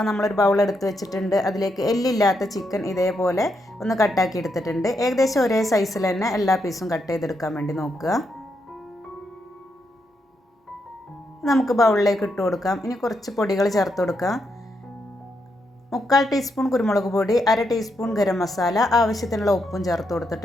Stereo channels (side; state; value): both; normal; correlation 0.81